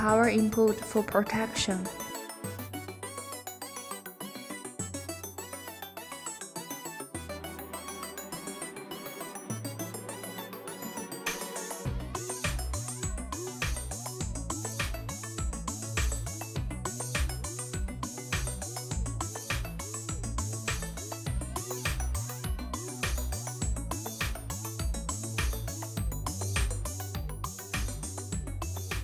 input for protection.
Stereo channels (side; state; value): both; identical; correlation 1.00